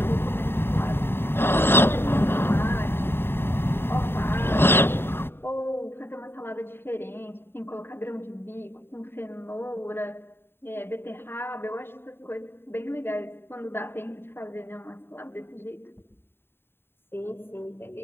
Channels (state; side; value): late; right; 0.11 ms